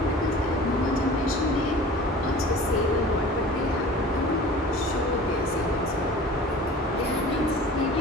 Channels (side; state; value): both; normal; correlation 0.42